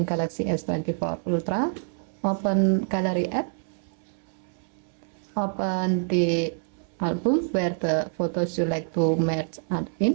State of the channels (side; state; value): left; silent; 60 dB below the other